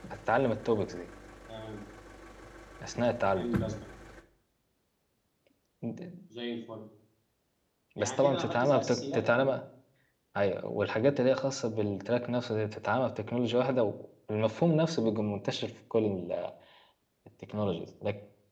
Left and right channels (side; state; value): both; identical; correlation 1.00